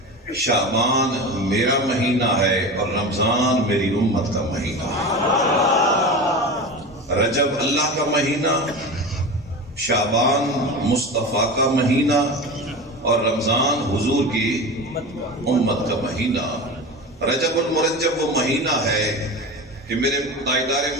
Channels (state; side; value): normal; both; correlation 0.28